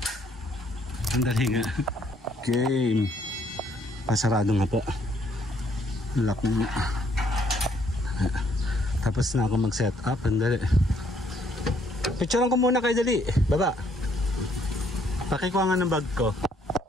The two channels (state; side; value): normal; both; correlation 0.67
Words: Sandali nga. Okay. Pasarado nga po. Lock mo. Tapos na ako mag-set up. Sandali. Picturean ko muna kayo dali. Baba. Pakikuha nga ng bag ko.